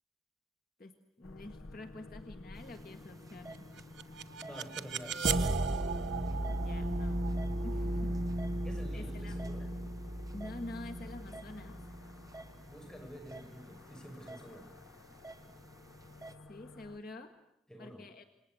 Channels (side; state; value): both; normal; correlation 0.76